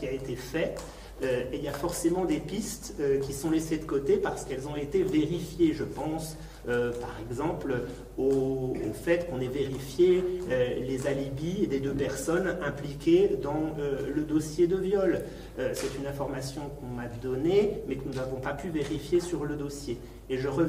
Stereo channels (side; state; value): both; identical; correlation 1.00